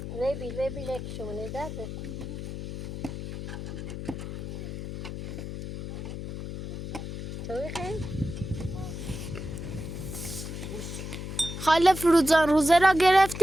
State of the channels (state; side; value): noise; left; hum, 7 dB below the sound